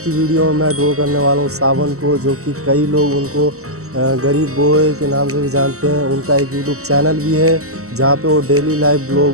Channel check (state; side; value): late; left; 0.64 ms